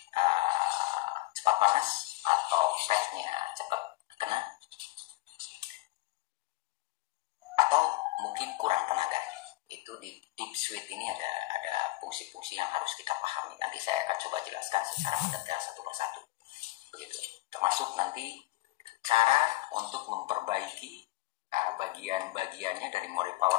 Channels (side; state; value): right; quieter; 20.4 dB